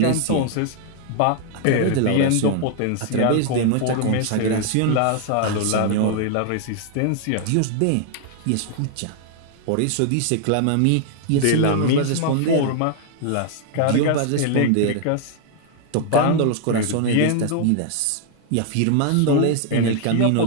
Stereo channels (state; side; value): different; both; correlation 0.00